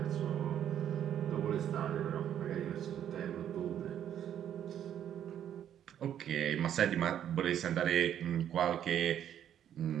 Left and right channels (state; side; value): quieter; left; 10.1 dB